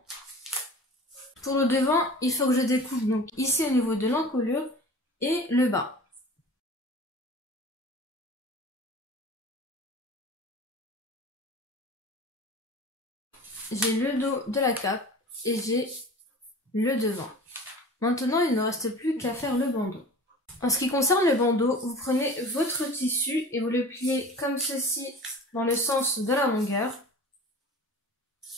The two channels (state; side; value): normal; both; correlation 0.40